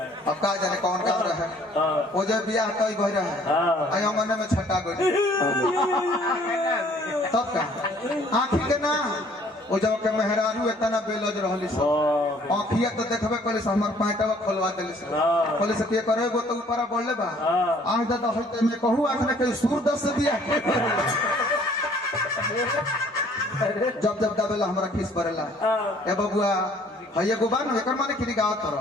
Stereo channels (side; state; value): both; normal; correlation 0.58